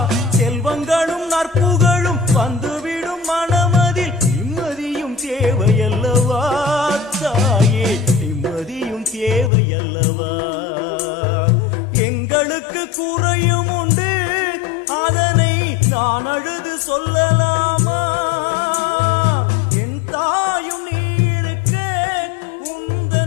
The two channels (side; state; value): right; drops out; at 9.5 s